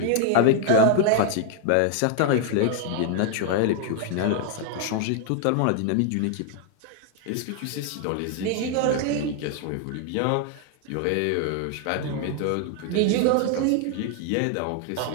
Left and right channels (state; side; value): different; both; correlation 0.00